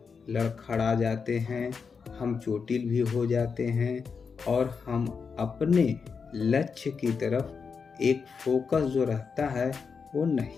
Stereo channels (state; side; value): quieter; right; 5.6 dB